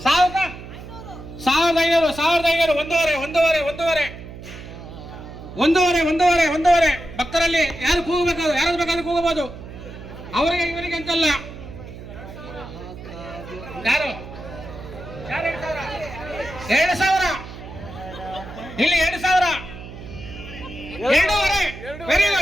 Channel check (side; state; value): right; noise; hum, 13 dB below the sound